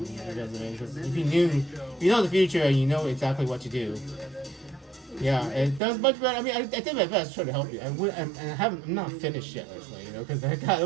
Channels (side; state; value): left; drops out; at 5.8 s